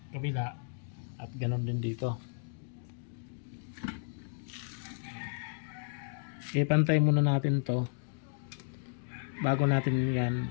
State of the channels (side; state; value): right; silent; digital silence